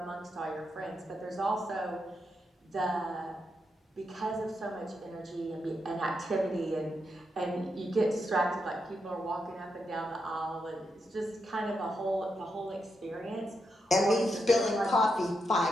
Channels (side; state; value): both; normal; correlation 0.83